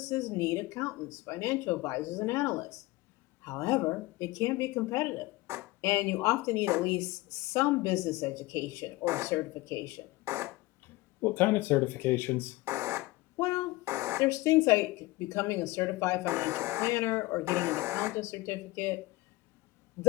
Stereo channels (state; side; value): quieter; right; 20.2 dB